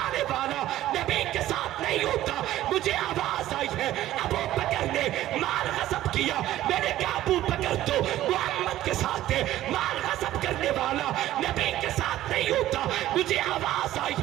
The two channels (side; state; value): left; quieter; 14.0 dB